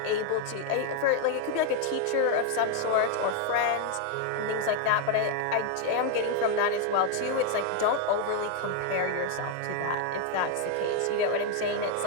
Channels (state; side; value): different; both; correlation 0.00